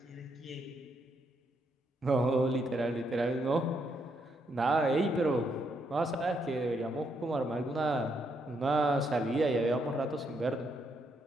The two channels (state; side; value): normal; both; correlation 0.77